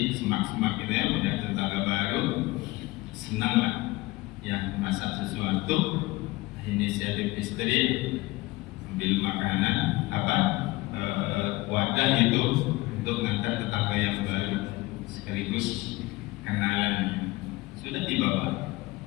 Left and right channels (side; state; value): right; quieter; 20.7 dB